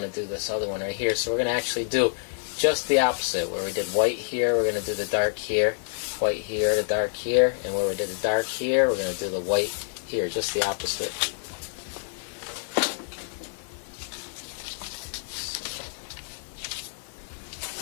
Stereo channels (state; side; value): silent; right; digital silence